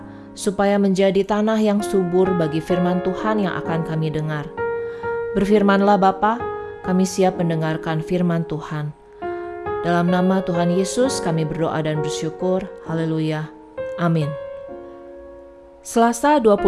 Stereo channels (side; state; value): both; identical; correlation 1.00